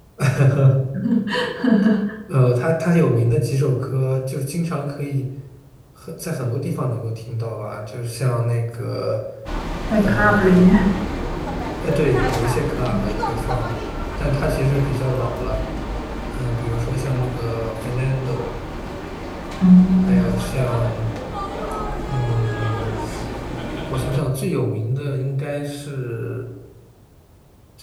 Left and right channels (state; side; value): identical; both; correlation 1.00